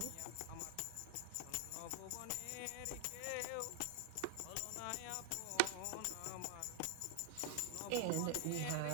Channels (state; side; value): different; both; correlation 0.00